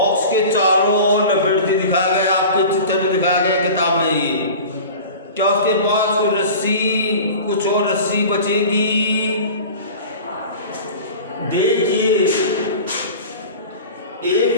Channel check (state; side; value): inverted; both; correlation -0.37